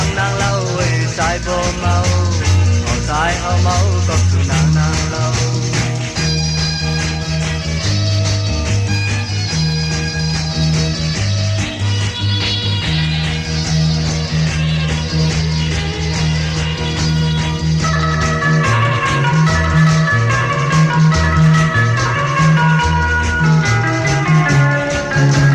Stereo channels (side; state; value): both; identical; correlation 1.00